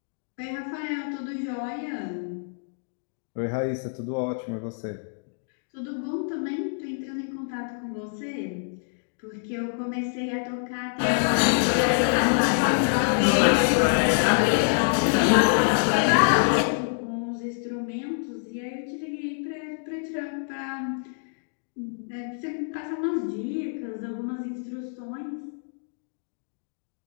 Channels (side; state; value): right; silent; digital silence